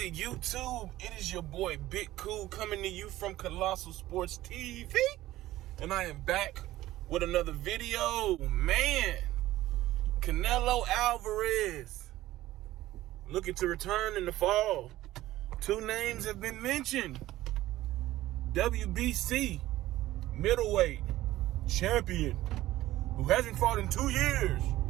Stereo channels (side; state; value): left; quieter; 15.7 dB